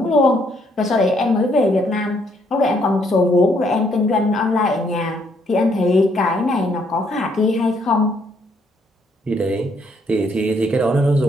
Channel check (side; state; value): both; normal; correlation 0.70